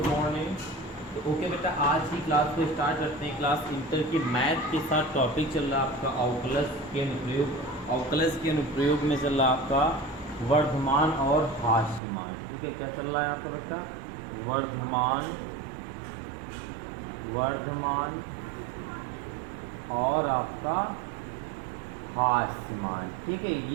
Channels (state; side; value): drops out; left; at 12.0 s